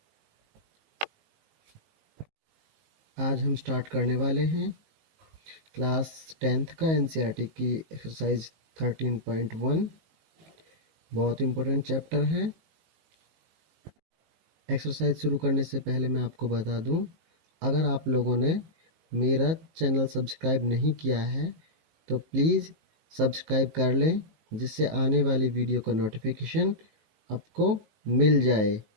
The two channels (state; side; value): late; left; 19 ms